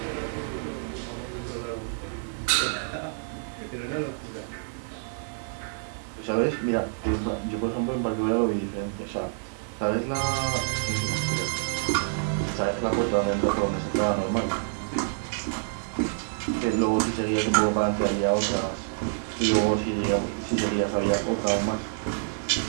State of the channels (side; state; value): left; silent; digital silence